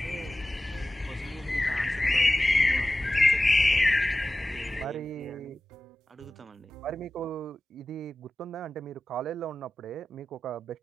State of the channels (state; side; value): normal; both; correlation 0.96